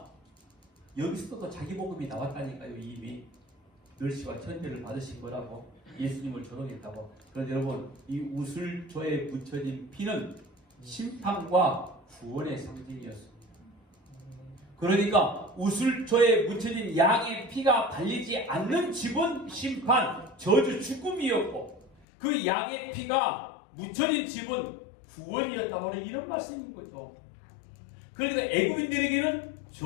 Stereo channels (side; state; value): right; drops out; at 22.0 s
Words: 여기서도 자기 복음이 나왔다니까요. 이미 멸시와 천대를 받으신 거라고, 예수님을 조롱했다고. 그런데 여러분 이 우슬초에 묻혀진 피는 심판과 구원의 상징이었습니다. 그러니까 우슬초에 묻혀진 양의 피가 발리지 않는 집은 심판, 저주, 죽음이었고 그 양의 피가 묻혀진 집은 구원이었다고 하는 이런 말씀인 거죠. 그러니까 애국인들에게는